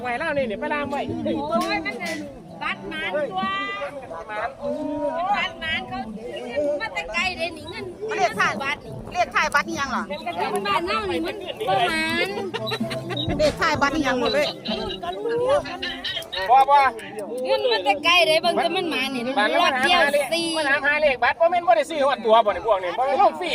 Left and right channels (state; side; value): identical; both; correlation 1.00